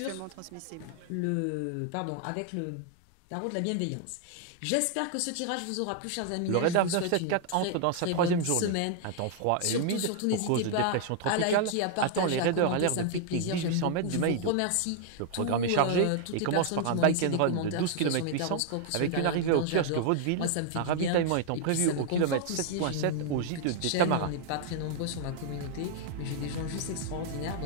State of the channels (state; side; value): different; both; correlation 0.00